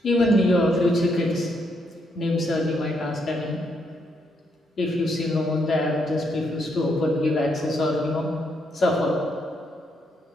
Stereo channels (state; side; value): normal; both; correlation 0.76